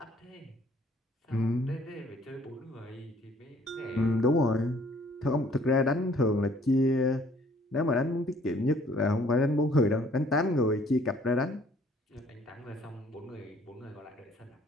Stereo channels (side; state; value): both; normal; correlation 0.59